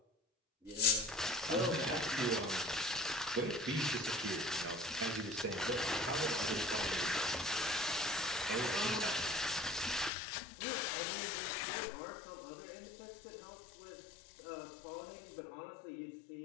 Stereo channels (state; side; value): drops out; right; at 10.1 s